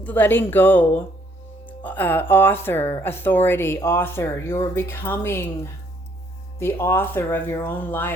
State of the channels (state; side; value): normal; both; correlation 0.66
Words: letting go. Author, authority, author. You're becoming the author of your own